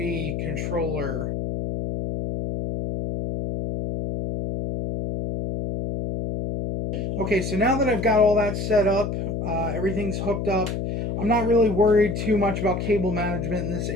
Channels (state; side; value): noise; left; hum, 3 dB below the sound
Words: controller. Okay, so now that I've got all that set up, everything's hooked up, I'm not really worried too much about cable management in this